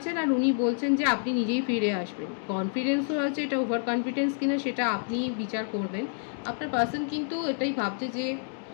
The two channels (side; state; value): right; silent; 59 dB below the other